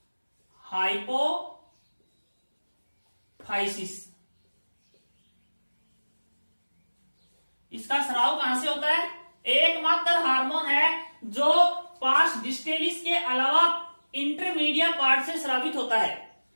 इसका स्राव कहां से होता है? एकमात्र हार्मोन है जो पास डिस्टेलिस के अलावा इंटरमीडिया पार्ट से स्रावित होता है।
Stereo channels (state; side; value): inverted; both; correlation -1.00